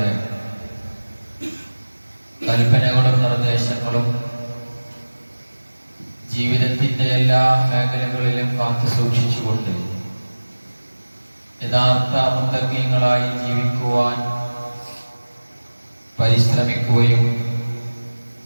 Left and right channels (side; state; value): both; inverted; correlation -1.00